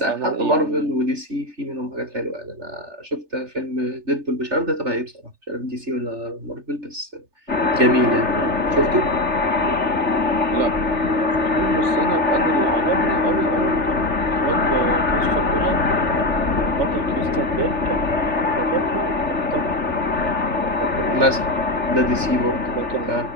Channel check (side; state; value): left; late; 3.3 ms